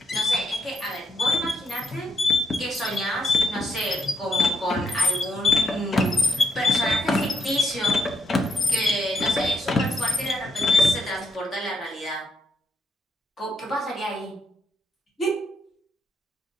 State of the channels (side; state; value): both; normal; correlation 0.78